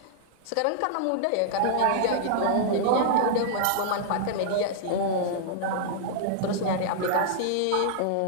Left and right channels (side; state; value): both; different; correlation -0.01